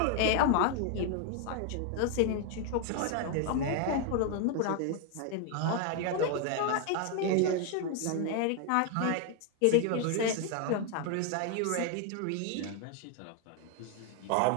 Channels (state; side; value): different; both; correlation 0.01